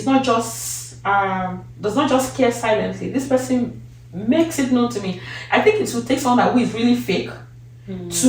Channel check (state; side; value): identical; both; correlation 1.00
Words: not just does not just care silently. This person makes it known to me. I think it will take someone who is really fake